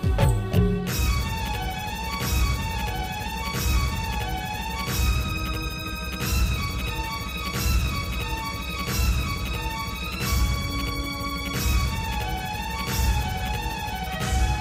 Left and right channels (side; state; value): both; identical; correlation 1.00